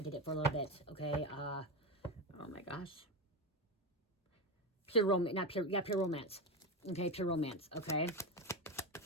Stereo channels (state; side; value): normal; both; correlation 0.17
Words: did it for a little bit, okay, oh my gosh, pure romance, pure romance, okay, pure romance, okay.